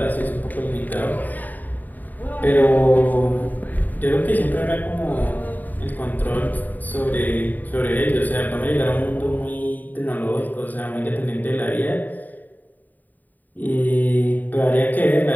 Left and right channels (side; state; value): right; late; 0.085 ms